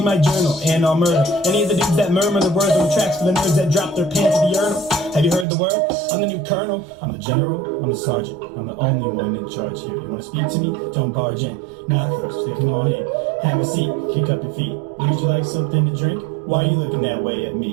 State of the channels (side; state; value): left; drops out; at 5.5 s